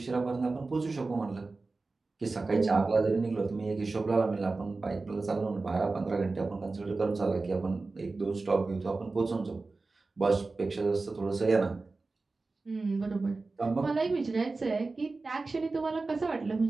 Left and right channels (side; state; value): left; quieter; 3.6 dB